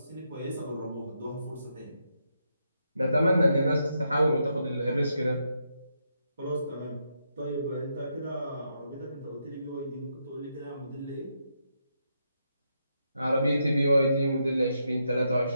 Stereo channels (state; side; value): inverted; both; correlation -0.81